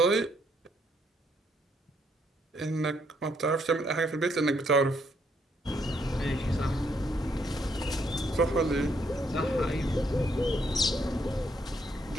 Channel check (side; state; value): both; normal; correlation 0.72